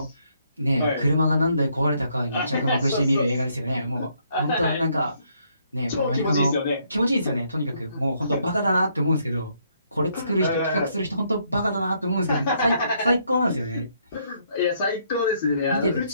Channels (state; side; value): inverted; both; correlation -0.71